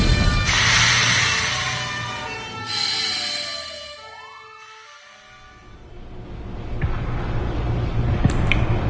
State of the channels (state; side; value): identical; both; correlation 1.00